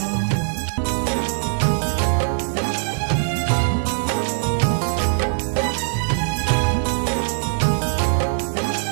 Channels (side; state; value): left; silent; digital silence